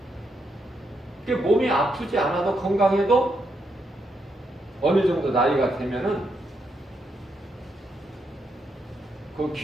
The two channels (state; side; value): normal; both; correlation 0.80